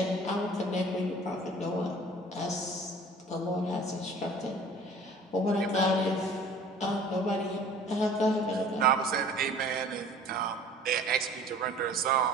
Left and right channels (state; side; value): normal; both; correlation 0.47